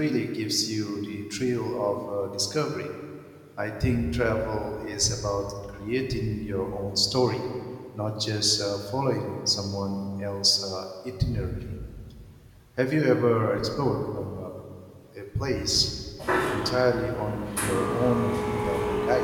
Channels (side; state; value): both; identical; correlation 1.00